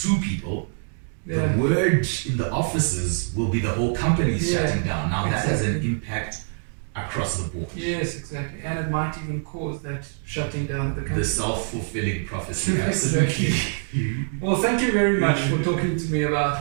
2 people, Yeah. the word in the offices will be the whole company is Yeah, shutting down. Now that has an exactly. impact across the board. Yes, exactly. And it might even cause that shutting down of the company. The self-fulfilling prophecy, Exactly. absolutely. Well, thank you very much for talking to me about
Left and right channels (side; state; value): left; silent; 59 dB below the other